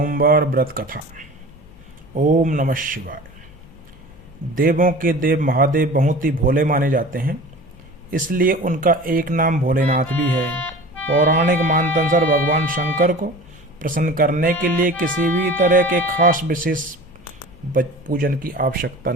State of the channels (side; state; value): left; noise; hum, 25 dB below the sound